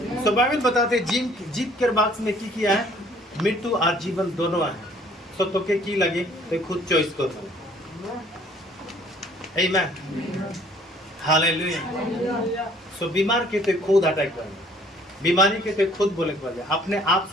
सो बाइबल बताते जीत के बॉक्स में की किया है, मृत्यु और जीवन दोनों है, सो तो के की लगे तो खुद चॉइस करो। आमीन, हालेलुया। सो बीमार के तो खुद अटैक कर, बीमारी के तो खुद बोले कर, अपने आप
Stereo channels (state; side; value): normal; both; correlation 0.58